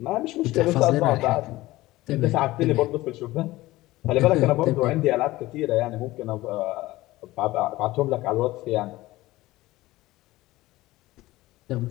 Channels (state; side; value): quieter; right; 18.0 dB